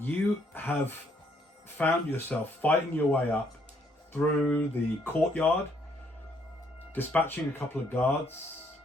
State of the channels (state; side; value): normal; both; correlation 0.69